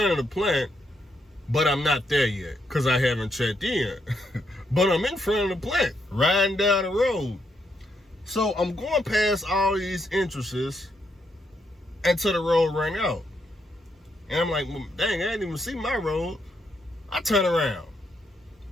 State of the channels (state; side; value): normal; both; correlation 0.78